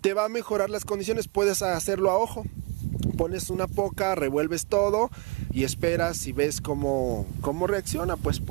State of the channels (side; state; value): left; quieter; 26.1 dB